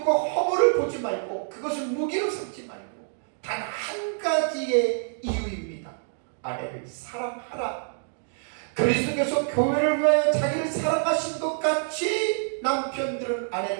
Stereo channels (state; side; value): silent; left; digital silence